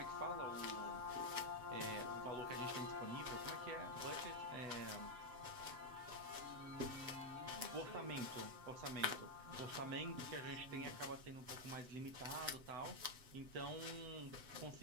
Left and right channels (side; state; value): left; late; 7.9 ms